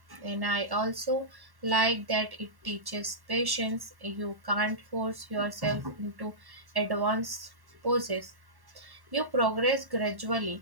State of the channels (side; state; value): left; late; 1.1 ms